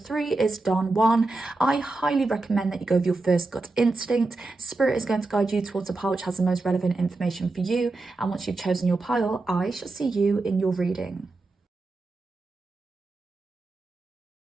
is Don Juan. I highly recommend that you go with your first gut instinct. Spirit is going to guide you towards a pile which has the most relevant information for you, and once you've chosen your pile, I shall see you in your reading.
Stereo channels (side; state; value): left; quieter; 3.3 dB